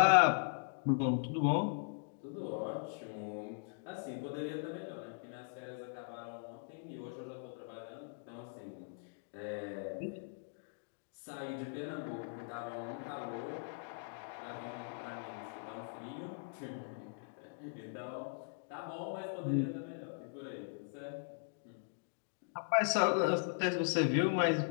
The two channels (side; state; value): right; silent; digital silence